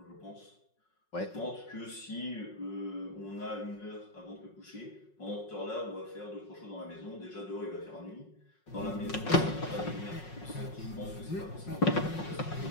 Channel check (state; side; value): late; right; 5.5 ms